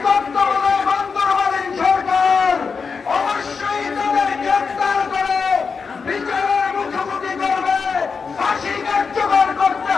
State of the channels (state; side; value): quieter; right; 5.3 dB